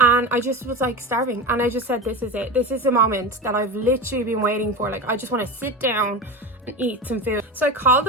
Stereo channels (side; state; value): both; normal; correlation 0.25